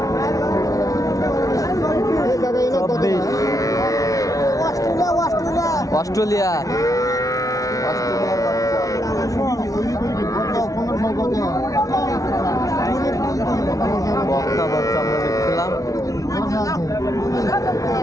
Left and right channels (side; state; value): right; late; 0.17 ms